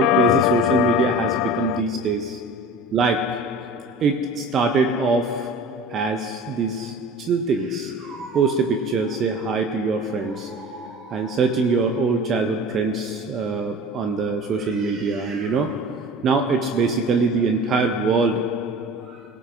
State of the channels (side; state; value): both; normal; correlation 0.38